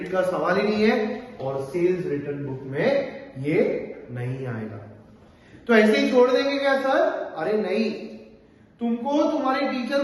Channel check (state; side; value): identical; both; correlation 1.00